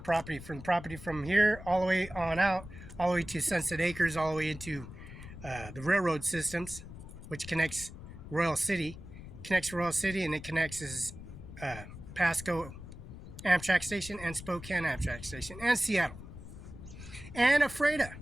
property from here all the way on out, all the way to Sunset Acres, all the way into the railroad systems, which connects Royal City, and it connects Pasco Amtrak Station and Spokane Amtrak Station and Seattle and Ephrata,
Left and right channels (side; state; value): left; noise; rumble, 13 dB below the sound